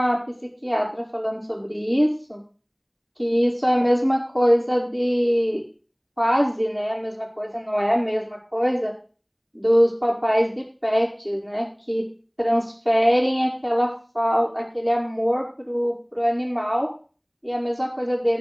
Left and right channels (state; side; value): identical; both; correlation 1.00